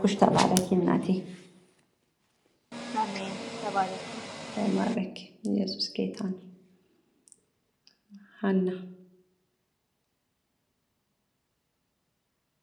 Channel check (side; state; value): both; identical; correlation 1.00